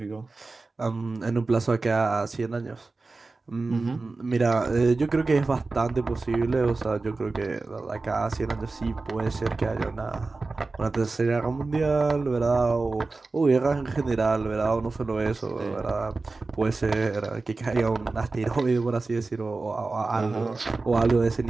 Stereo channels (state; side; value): quieter; left; 3.6 dB